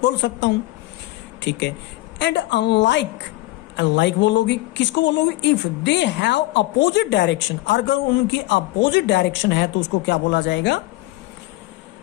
बोल सकता हूं, ठीक है। एंड अनलाइक, अनलाइक बोलोगे, किसको बोलोगे? If they have opposite direction, अगर उनकी अपोजिट डायरेक्शन है तो उसको क्या बोला जाएगा?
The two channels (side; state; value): right; quieter; 19.0 dB